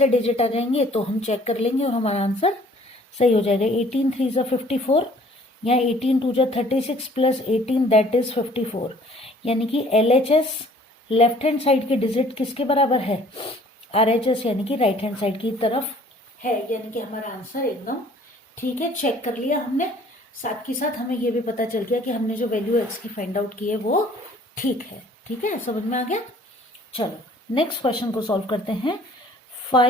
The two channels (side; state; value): both; normal; correlation 0.55